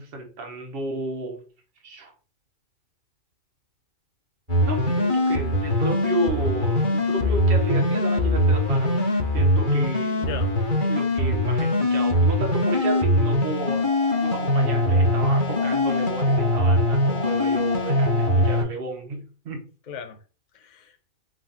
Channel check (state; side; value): late; left; 2.3 ms